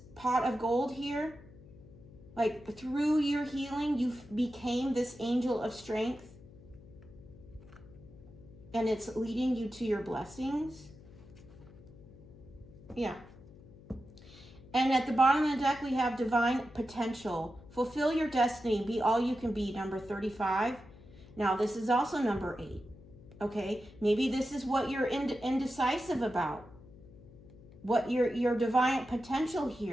pot of gold here. Like through your healing, you became this angel of strength. And it's leading you to your blessings. Yeah. And at the bottom of the deck, we have divine potential. Fulfill your destiny. Be all you can be, number 35. Now, this is also number 8. Okay? Maybe this is what you're indecisive about. What your divine potential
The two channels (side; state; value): left; noise; hum, 20 dB below the sound